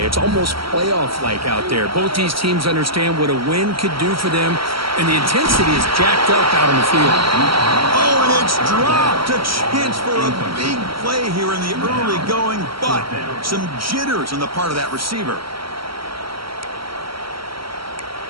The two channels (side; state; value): left; late; 0.74 ms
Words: It's almost playoff-like out there. Both these teams understand what a win could do for them, and the intensity is jacked up out on the field. Oh, and it's dropped. A chance for a big play here in the early going, but some jitters on the part of that receiver.